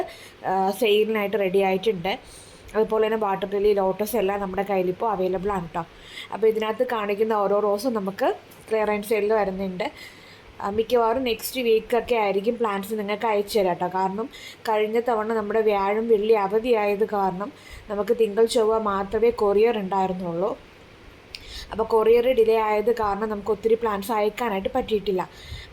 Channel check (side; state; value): both; identical; correlation 1.00